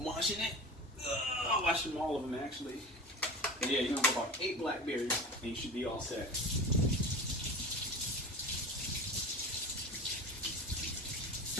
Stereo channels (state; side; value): normal; both; correlation 0.32